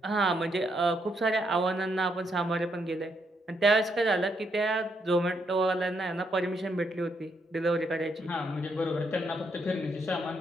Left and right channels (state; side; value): normal; both; correlation 0.76